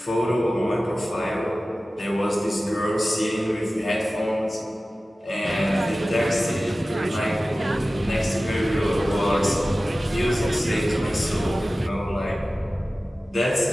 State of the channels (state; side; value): normal; both; correlation 0.96